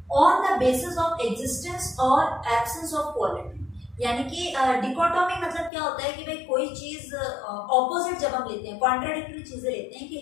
on the basis of existence और एब्सेंस ऑफ क्वालिटी, यानी कि डिकोटोमी मतलब क्या होता है कि भाई कोई चीज ऑपोजिट जब हम लेते हैं, कॉन्ट्राडिक्टरी चीजें लेते हैं कि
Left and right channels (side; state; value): right; drops out; at 5.7 s